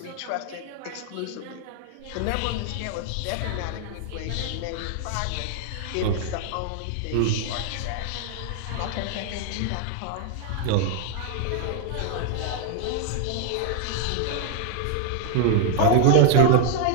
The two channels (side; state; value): both; different; correlation 0.00